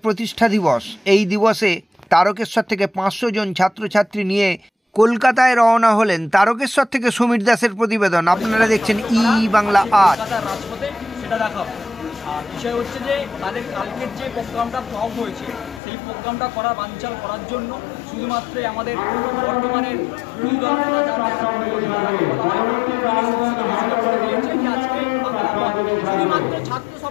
প্রতিষ্ঠা দিবস। এই দিবসে তারকেশ্বর থেকে 500 জন ছাত্রছাত্রী নিয়ে কলকাতায় রওনা হলেন। তারকেশ্বর থেকে সমীর দাসের প্রতিবেদন। আপনারা দেখছেন ই বাংলা আজ। বিষয় হচ্ছে যে তাদের কালকের যে প্রোগ্রামটা ফ্লপ হয়েছে, সেই প্রোগ্রামটা বানচাল করার জন্য শুধুমাত্র আমাদের বর্তমানের বিরোধী দল নেতা যারা আজকে শুধুমাত্র ছাত্র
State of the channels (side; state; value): right; drops out; at 15.8 s